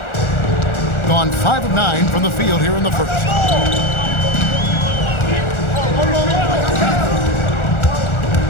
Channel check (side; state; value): right; late; 1.4 ms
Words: Gone 5 of 9 from the field here in the first.